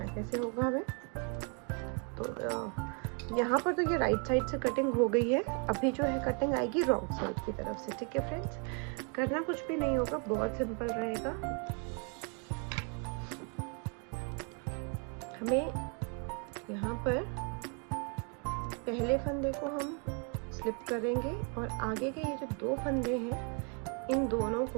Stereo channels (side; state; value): left; quieter; 37.7 dB